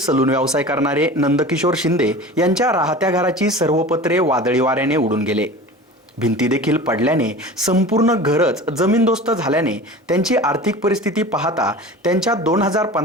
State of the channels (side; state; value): both; normal; correlation 0.36